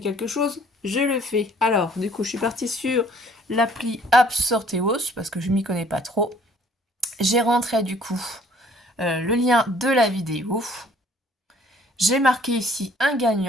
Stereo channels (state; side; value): normal; both; correlation 0.57